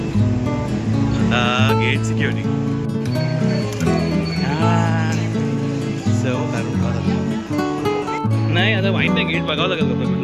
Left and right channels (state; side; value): identical; both; correlation 1.00